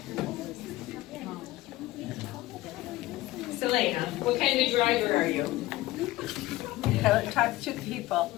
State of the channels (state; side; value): quieter; right; 17.6 dB